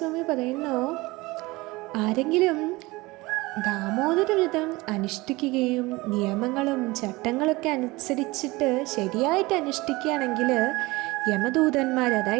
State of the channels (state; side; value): quieter; left; 22.0 dB